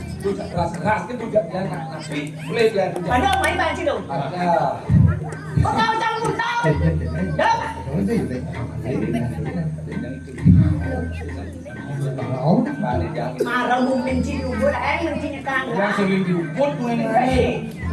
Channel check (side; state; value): both; identical; correlation 1.00